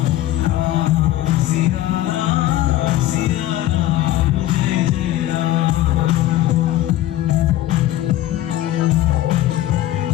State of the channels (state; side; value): quieter; right; 14.2 dB